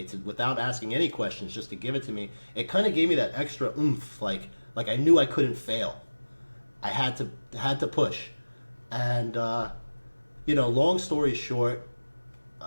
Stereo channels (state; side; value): inverted; both; correlation -1.00